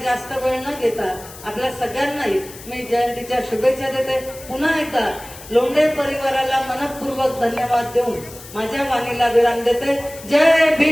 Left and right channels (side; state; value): left; noise; hiss, 17 dB below the sound